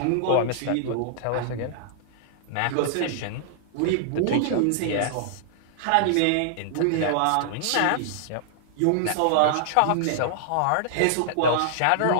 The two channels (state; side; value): different; both; correlation -0.01